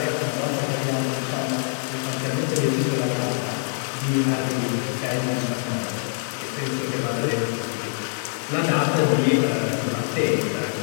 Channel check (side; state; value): right; silent; digital silence